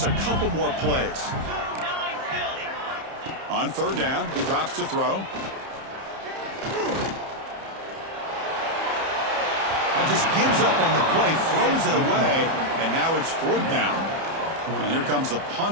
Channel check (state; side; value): late; left; 30 ms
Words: a couple more plays. On third down, he drops to throw. Just gives up on the play, throws it away, and now it's fourth down. And here comes the